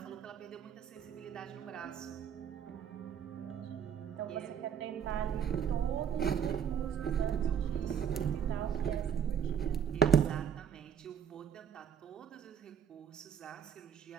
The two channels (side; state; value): left; quieter; 8.2 dB